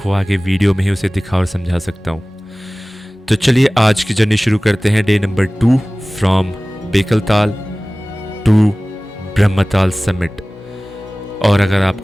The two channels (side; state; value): both; normal; correlation 0.98